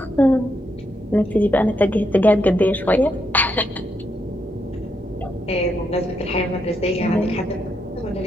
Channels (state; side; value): normal; both; correlation 0.79